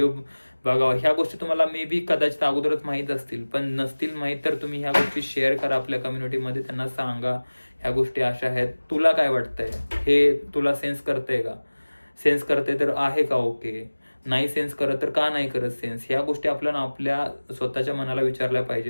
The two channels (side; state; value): both; inverted; correlation -1.00